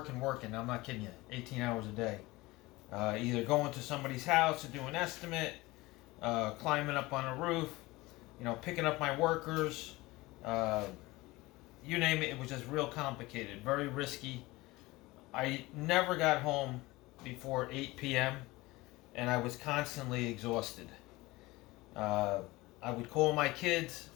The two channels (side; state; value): right; quieter; 20.8 dB